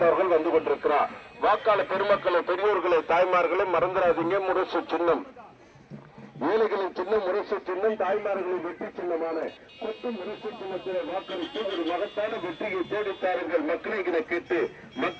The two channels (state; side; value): identical; both; correlation 1.00